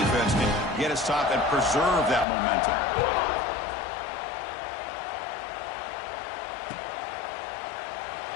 defense can get a stop and preserve that momentum.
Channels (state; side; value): drops out; right; at 2.2 s